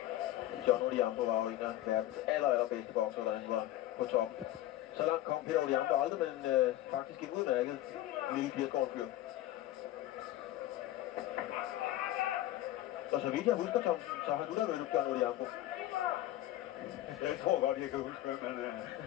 John Odhiambo var jo en af verdens allerbedste bokser, da han var på top. Så langt kom Peter Odhiambo aldrig, men faktisk en udmærket lille 80-årig fyr. Så vidt jeg husker, Thomsen, så har du da mødt John Odhiambo. Jeg tror godt, jeg kan huske, hvem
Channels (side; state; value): right; quieter; 14.3 dB